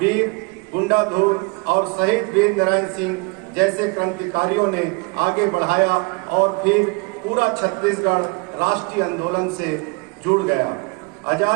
गुंडाधुर और शहीद वीर नारायण सिंह जैसे क्रांतिकारियों ने आगे बढ़ाया और फिर पूरा छत्तीसगढ़ राष्ट्रीय आंदोलन से जुड़ गया।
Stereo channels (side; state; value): left; quieter; 29.1 dB